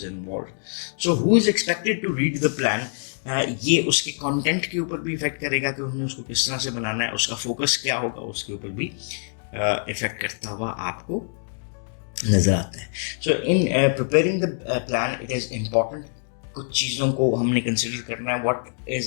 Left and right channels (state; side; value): silent; right; digital silence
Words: involve. So who is expected to read the plan, ये उसके कंटेंट के ऊपर भी इफेक्ट करेगा कि उन्हें उसको किस तरह से बनाना है, उसका फोकस क्या होगा, उसके ऊपर भी इफेक्ट करता हुआ आपको नजर आता है। So in preparing the plan it is important, कुछ चीज़ों को हमने कंसिडर करना है। What